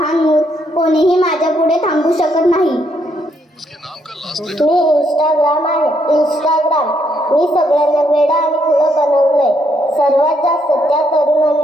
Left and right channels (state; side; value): normal; both; correlation 0.74